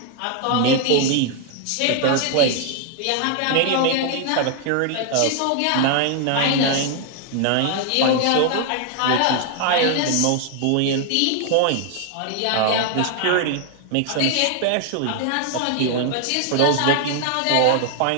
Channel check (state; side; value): different; both; correlation 0.00